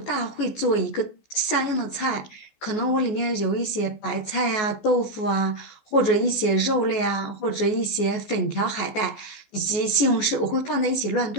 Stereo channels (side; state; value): right; late; 14 ms